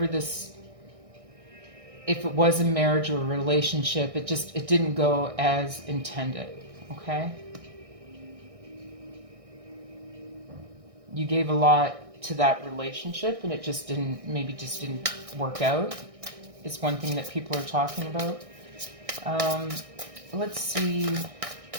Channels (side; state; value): left; late; 1.6 ms